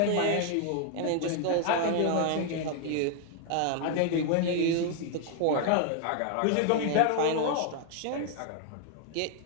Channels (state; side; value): different; both; correlation 0.00